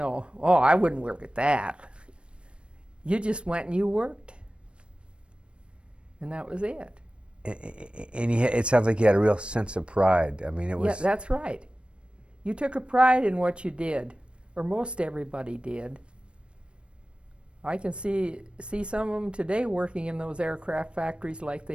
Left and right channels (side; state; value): left; late; 0.058 ms